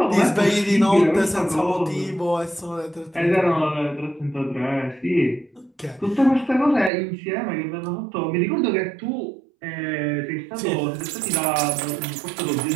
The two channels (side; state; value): left; drops out; at 6.9 s